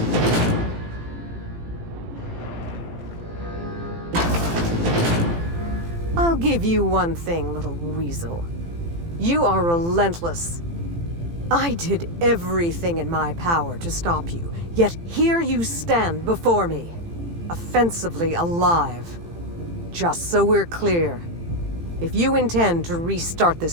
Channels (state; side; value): late; left; 18 ms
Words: I'll give you one thing, little weasel. You are relentless. I did everything in my power to stop you, yet here you stand before me, offensively alive. Just so we're clear, if you intend to restart